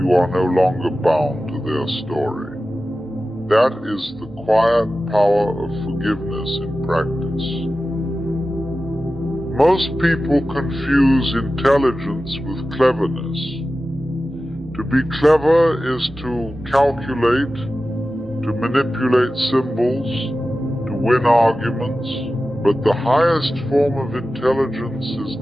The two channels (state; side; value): noise; right; hum, 25 dB below the sound